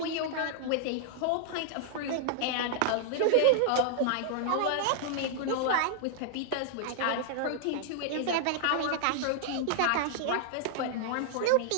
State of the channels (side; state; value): both; different; correlation -0.01